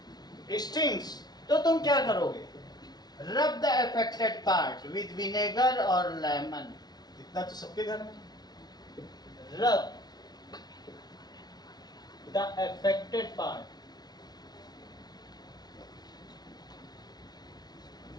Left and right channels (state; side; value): late; right; 0.19 ms